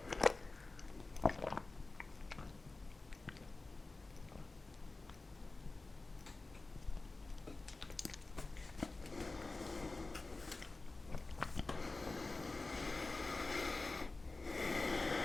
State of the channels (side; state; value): right; quieter; 3.4 dB